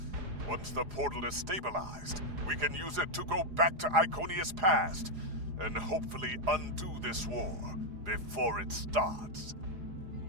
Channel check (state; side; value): late; left; 4.8 ms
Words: Once the portal is stabilized, we can use it to go back to Iconia's past and hopefully undo this war before it starts.